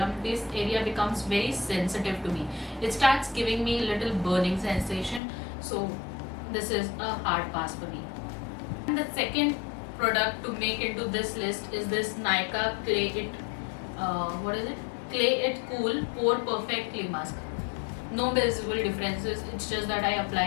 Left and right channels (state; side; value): drops out; right; at 5.2 s